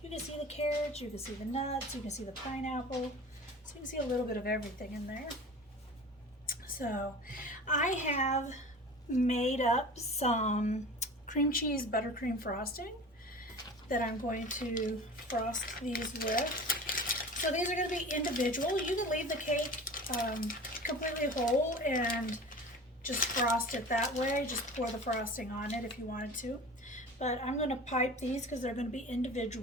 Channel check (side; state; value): both; normal; correlation 0.37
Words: you can see the carrots, you can see the nuts, you can see the pineapple, so you can see a little bit of everything in there. So I have made up some cream cheese buttercream frosting that I'm going to frost these with. So these are going to be individual. You can leave the cake completely whole and just frost it that way. Just pour the frosting on it if you wanted to. But I'm going to pipe these because they're going to be